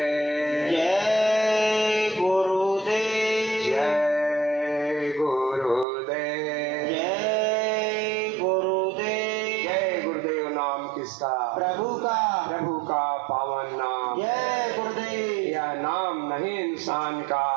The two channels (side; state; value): left; drops out; at 5.9 s